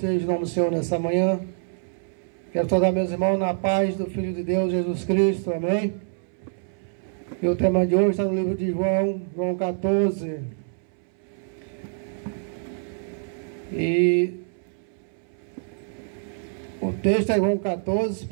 o nome do Senhor nessa manhã. Quero saudar meus irmãos na paz do Filho de Deus, Jesus Cristo, amém? E o tema de hoje está no livro de João, João 14. E o texto é João 14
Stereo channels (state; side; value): silent; left; 61 dB below the other